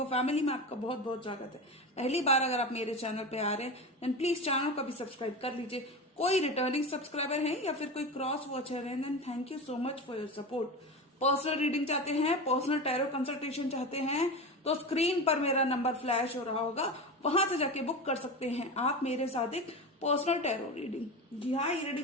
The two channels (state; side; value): normal; both; correlation 0.25